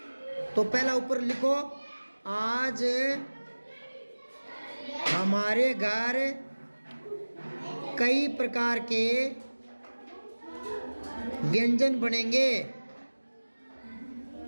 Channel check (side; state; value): both; inverted; correlation -1.00